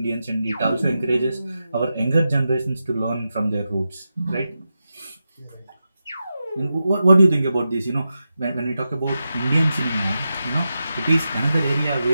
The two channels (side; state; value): both; inverted; correlation -0.90